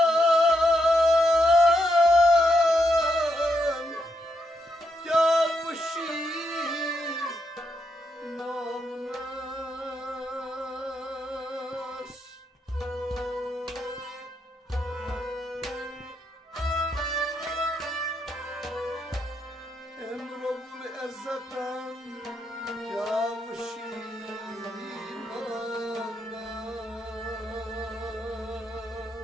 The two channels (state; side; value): normal; both; correlation 0.80